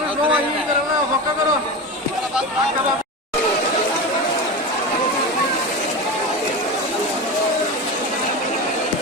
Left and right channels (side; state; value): both; normal; correlation 0.24